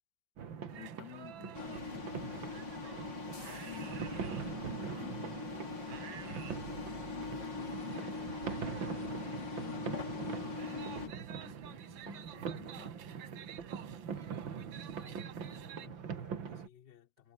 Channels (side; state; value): left; late; 5.6 ms